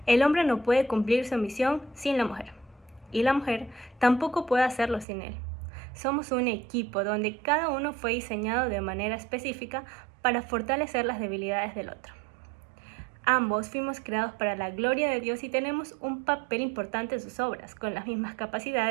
El hombre no puede cumplir su misión sin la mujer, y la mujer tampoco puede hacerlo sin él. Somos un equipo donde cada uno fue diseñado de manera específica para fortalecer las debilidades del otro. Ambos fuimos creados para la gloria de Dios y tenemos un papel importante en sus obras, con las mismas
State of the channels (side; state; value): left; drops out; at 5.1 s